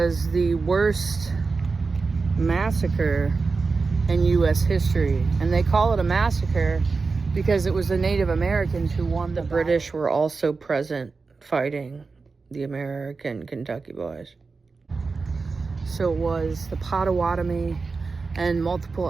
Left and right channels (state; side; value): quieter; left; 4.3 dB